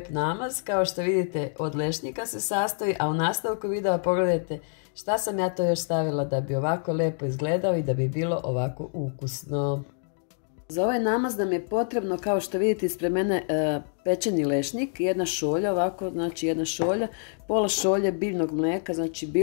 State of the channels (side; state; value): right; silent; 60 dB below the other